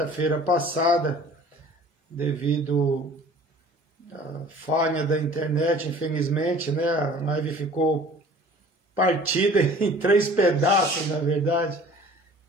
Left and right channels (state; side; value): normal; both; correlation 0.48